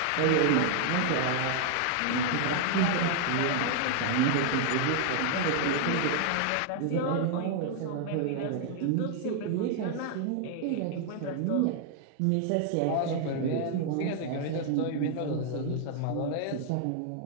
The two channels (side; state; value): both; different; correlation 0.00